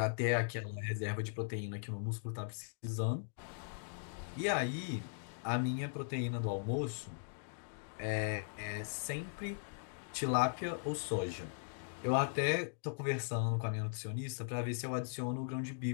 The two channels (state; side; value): silent; right; digital silence